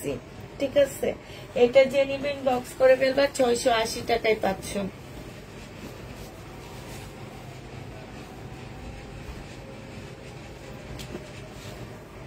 ঠিক আছে। এটা যে নিবেন বক্স করে ফেলবা, 680 টাকায় পাচ্ছ।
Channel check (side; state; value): both; identical; correlation 1.00